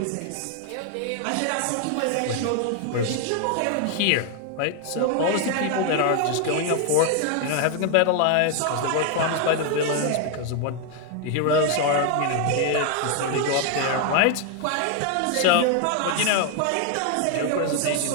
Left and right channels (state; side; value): different; both; correlation 0.01